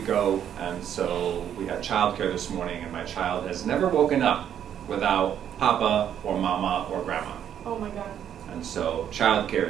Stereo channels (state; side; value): quieter; left; 9.5 dB